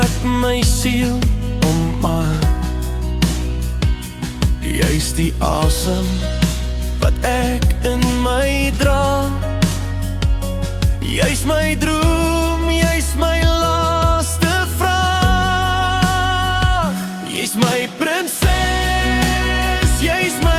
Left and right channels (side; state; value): both; identical; correlation 1.00